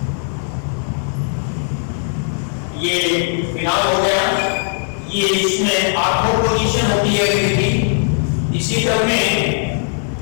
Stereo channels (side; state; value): right; silent; 67 dB below the other